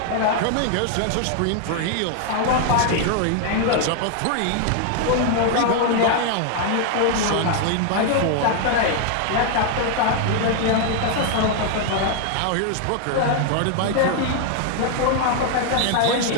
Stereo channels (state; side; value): different; both; correlation 0.00